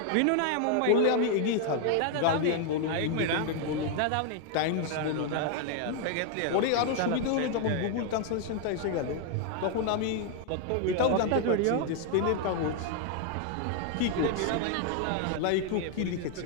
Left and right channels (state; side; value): different; both; correlation 0.00